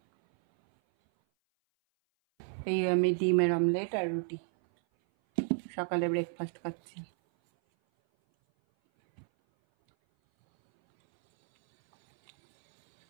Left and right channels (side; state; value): left; silent; 57 dB below the other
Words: এই আমি ডিমের অমলেট আর রুটি সকালে ব্রেকফাস্ট খাচ্ছি।